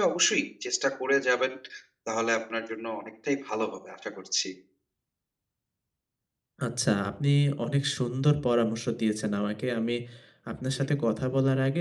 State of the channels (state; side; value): identical; both; correlation 1.00